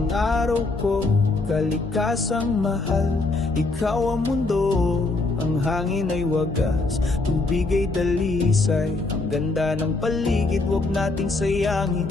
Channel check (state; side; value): quieter; right; 3.3 dB